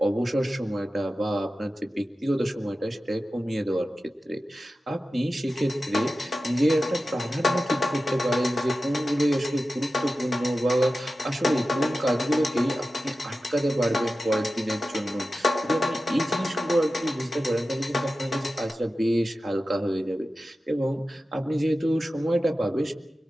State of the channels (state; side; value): normal; both; correlation 0.94